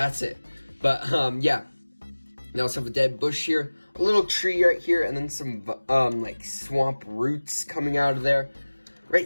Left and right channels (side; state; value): both; inverted; correlation -1.00